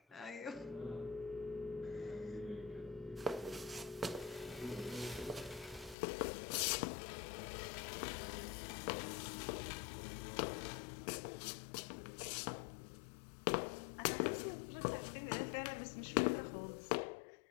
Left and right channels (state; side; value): drops out; right; at 6.0 s